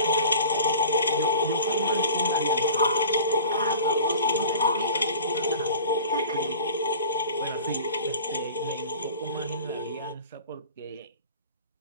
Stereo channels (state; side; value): inverted; both; correlation -0.42